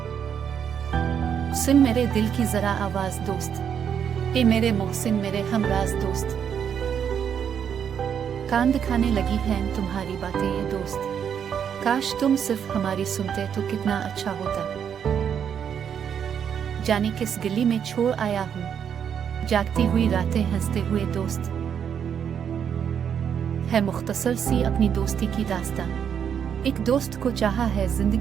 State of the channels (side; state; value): left; quieter; 8.1 dB